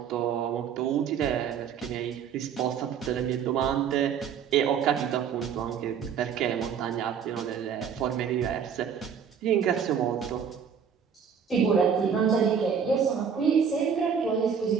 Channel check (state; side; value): quieter; left; 7.3 dB